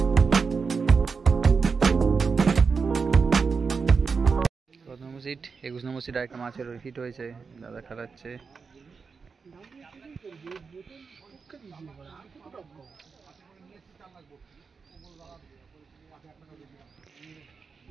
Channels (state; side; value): quieter; left; 5.2 dB